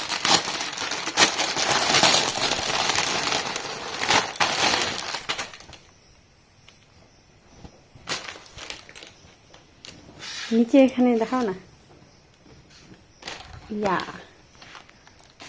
নিচে এখানে দেখাও না, ইয়া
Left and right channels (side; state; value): both; identical; correlation 1.00